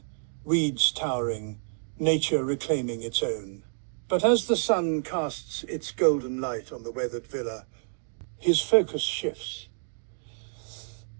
weeds towering, nature reclaiming its own. But as the sun casts its golden light on the weathered villa, his focus shifts.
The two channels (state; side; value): silent; left; digital silence